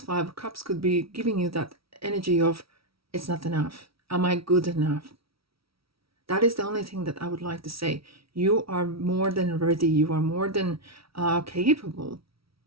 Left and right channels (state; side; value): late; left; 0.75 ms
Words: 5 of Cups could be giving you that energy of, it's not enough. Am I good enough? That is the only thing that I would like to say. You are more than ready. You are more than capable